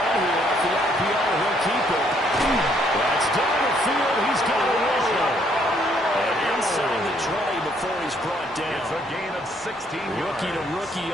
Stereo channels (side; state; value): both; normal; correlation 0.68